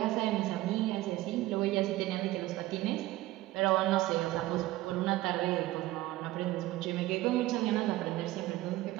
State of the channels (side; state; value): left; quieter; 16.8 dB